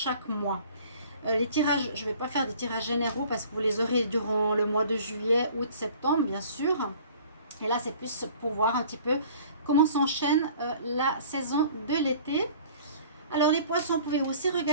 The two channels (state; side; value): inverted; both; correlation -0.50